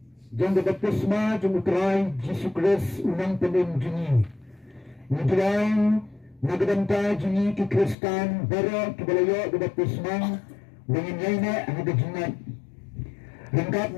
jang baptisma jang utrai Yesus Kristus unang penim jini. Nidrai nagadanta jini ki Kristan bara kibalayo baptisma dengan yaina hagajingat. Lengkap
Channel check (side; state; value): right; drops out; at 8.0 s